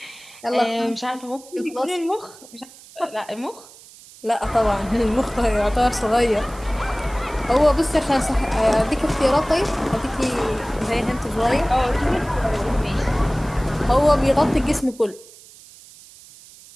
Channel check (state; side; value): noise; right; hiss, 21 dB below the sound